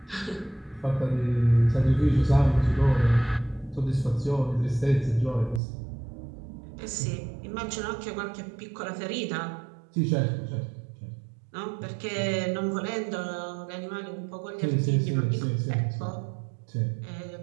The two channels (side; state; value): left; drops out; at 5.6 s